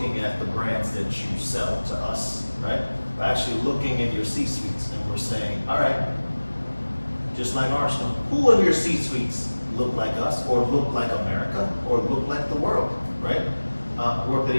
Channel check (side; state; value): both; inverted; correlation -1.00